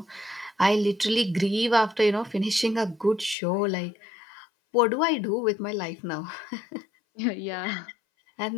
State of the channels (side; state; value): right; drops out; at 3.4 s